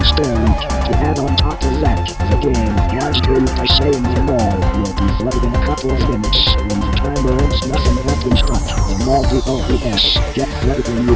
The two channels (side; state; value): both; identical; correlation 1.00